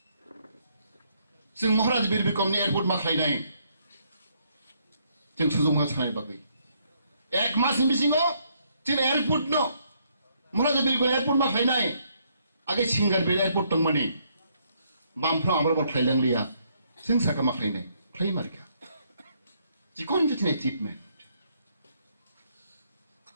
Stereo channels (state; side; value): inverted; both; correlation -0.71